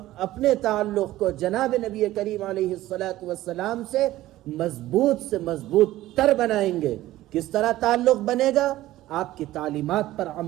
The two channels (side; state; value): left; quieter; 15.6 dB